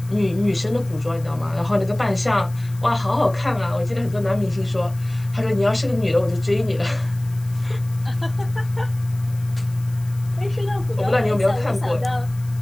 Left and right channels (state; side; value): noise; left; hiss, 23 dB below the sound